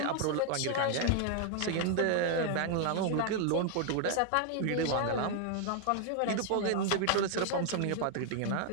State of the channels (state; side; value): different; both; correlation 0.00